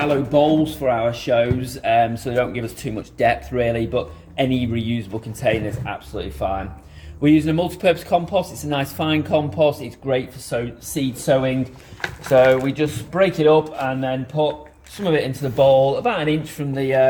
bowls for our shows, so they don't give us too much depth really, but any reusable container is absolutely fine. We're using a multi-purpose compost. It's a nice fine compost. It's great for seed sowing. So we just break it up and then put some of it into the bowl, about 1 inch from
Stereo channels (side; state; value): both; identical; correlation 1.00